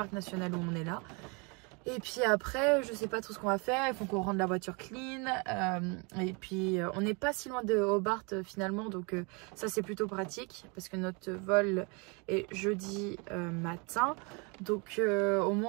national où on est là. Et puis après, je sais pas trop ce qu'on va faire. Il faut qu'on rende la voiture clean. Et puis, on n'est pas si loin de Hobart finalement. Donc, ça, c'est plutôt pratique parce que notre vol est jeudi matin. Donc, au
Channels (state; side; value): quieter; left; 31.4 dB